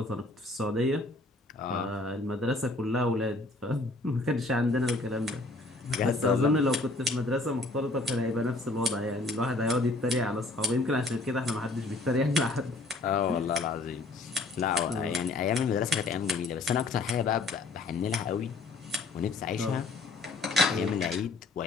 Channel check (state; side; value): quieter; right; 3.1 dB